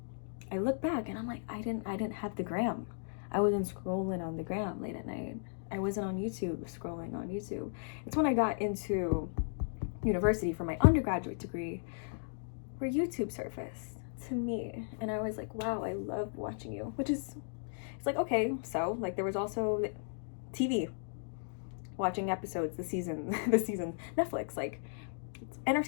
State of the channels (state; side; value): silent; right; digital silence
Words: I look back and I'm like, I didn't have the gram. I wasn't scrolling on the gram late at night. I wasn't on YouTube scrolling on YouTube. It's when I got into university for my undergraduate degree where YouTube surfaced to me. And I was like, wow, I love watching you. It's like, okay, so like there was also TV, watching episodes, the season, Netflix, like